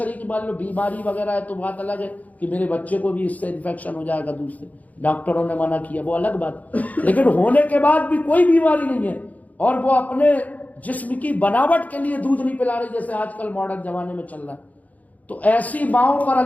مان لو بیماری وغیرہ ہے تو بات الگ ہے کہ میرے بچے کو بھی اس سے انفیکشن ہو جائے گا، دوسرے ڈاکٹروں نے منع کیا، وہ الگ بات، لیکن ہونے کے بعد بھی کوئی بیماری نہیں ہے اور وہ اپنے جسم کی بناوٹ کے لیے دودھ نہیں پلا رہی جیسے آج کل ماڈرن زمانے میں چل رہا ہے، تو ایسی ماؤں پر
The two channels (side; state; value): right; late; 0.076 ms